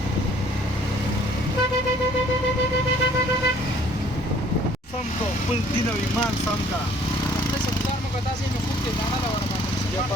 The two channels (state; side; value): normal; both; correlation 0.58